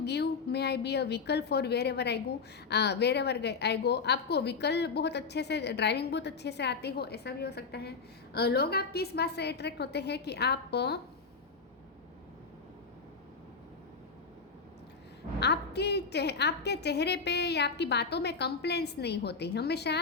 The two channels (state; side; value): quieter; right; 4.9 dB